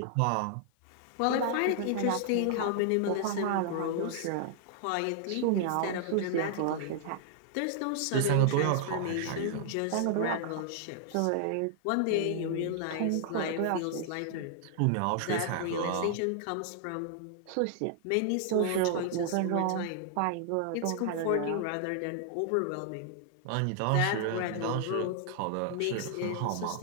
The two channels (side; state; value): both; different; correlation 0.00